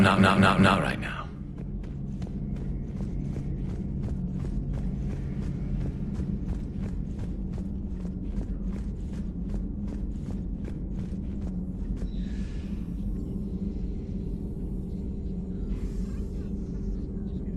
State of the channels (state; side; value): identical; both; correlation 1.00